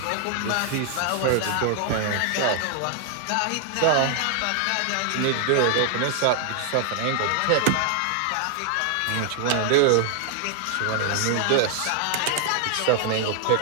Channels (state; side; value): different; both; correlation 0.00